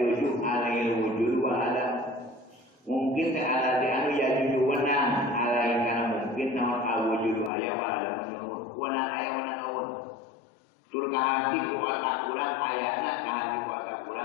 alail wujud wa adam mungkin te ala di anu ya juju wenang alail kana mungkin naon awujud aya wa adam wenang aya wenang eueuh tur ka hati ku otak urang ayana ka hati ku otak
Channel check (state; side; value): drops out; right; at 7.5 s